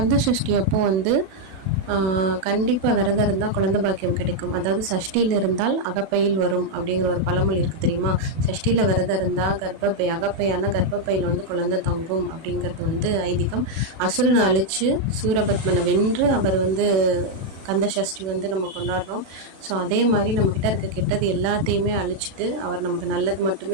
சஷ்டி அப்போ வந்து கண்டிப்பாக விரதம் இருந்தால் குழந்தை பாக்கியம் கிடைக்கும். அதாவது சஷ்டியில் இருந்தால் அகப்பையில் வரும் அப்படிங்கிற ஒரு பழமொழி இருக்குது தெரியுமா? சஷ்டியில் விரதம் இருந்தால் அகப்பையான கர்ப்பப்பையில் வந்து குழந்தை தங்கும் அப்படிங்கிறது வந்து ஐதீகம். அசுரனை அழித்து சூரபத்மனை வென்று அவர் வந்து கந்த சஷ்டி வந்து நம்ம கொண்டாடுறோம். ஸோ அதே மாதிரி நம்மக்கிட்ட இருக்க கெட்டது எல்லாத்தையுமே அழிச்சிட்டு அவர் நமக்கு நல்லது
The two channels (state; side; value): late; left; 37 ms